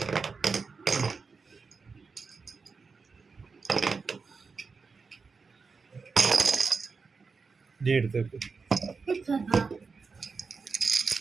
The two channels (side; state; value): left; quieter; 4.8 dB